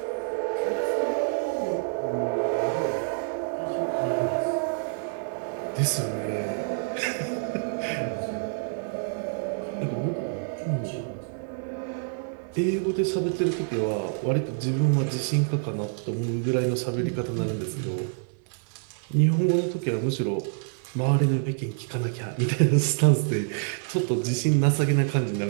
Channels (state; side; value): silent; left; digital silence